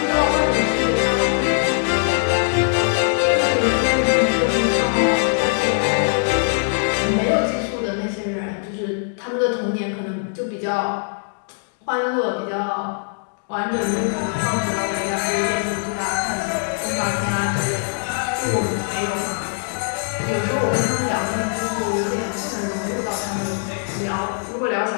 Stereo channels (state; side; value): silent; right; digital silence